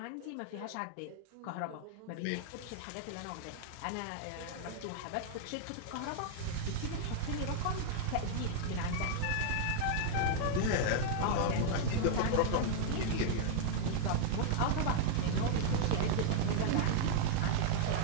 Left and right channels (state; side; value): different; both; correlation -0.01